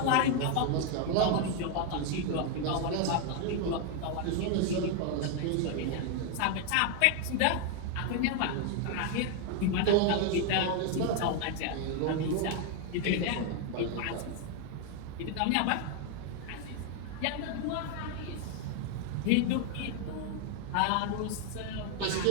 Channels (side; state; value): both; different; correlation 0.01